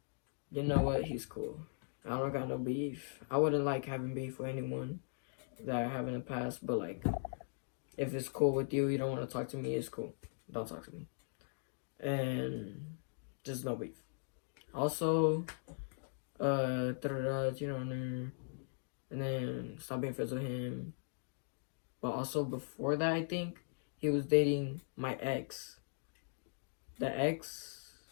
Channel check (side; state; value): right; silent; digital silence